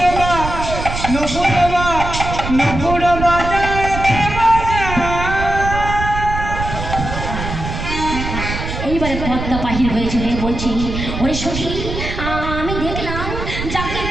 বাজায় কে এইবারে পদ্মা বাহির হয়েছিল বলছি ওরে সখী আমি দেখলাম যাকে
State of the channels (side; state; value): right; noise; rumble, 5 dB below the sound